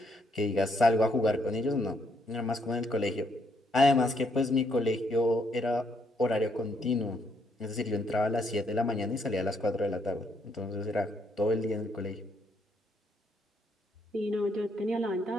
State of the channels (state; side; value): normal; both; correlation 0.73